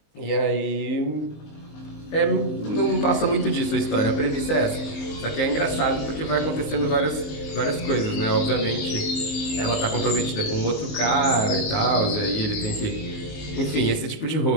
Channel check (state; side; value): late; right; 19 ms